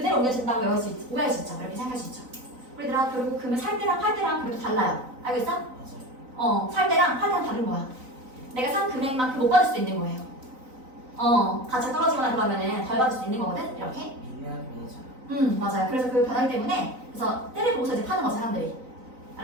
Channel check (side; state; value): left; late; 4.0 ms